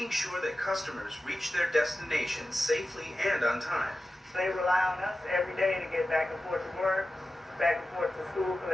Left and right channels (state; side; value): normal; both; correlation 0.93